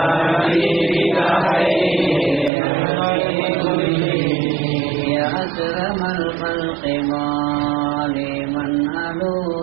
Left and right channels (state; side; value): drops out; left; at 2.5 s